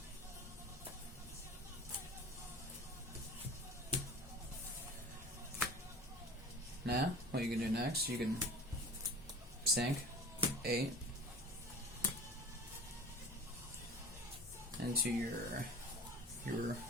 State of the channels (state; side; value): normal; both; correlation 0.40